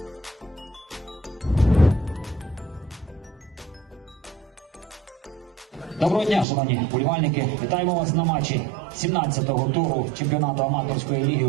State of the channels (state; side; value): drops out; left; at 6.5 s